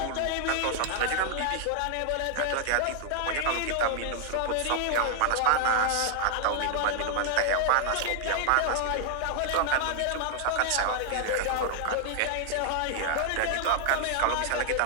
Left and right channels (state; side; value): different; both; correlation 0.00